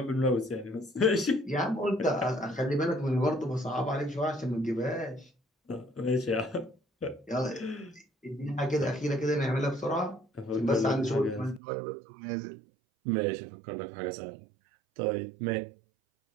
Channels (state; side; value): drops out; left; at 11.6 s